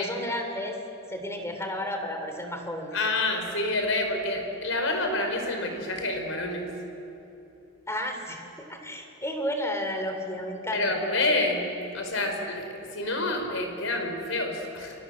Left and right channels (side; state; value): both; normal; correlation -0.01